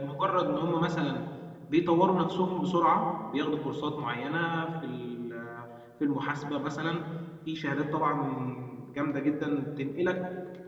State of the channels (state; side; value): identical; both; correlation 1.00